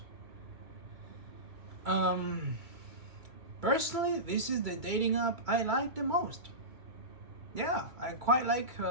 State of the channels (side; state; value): left; late; 2.2 ms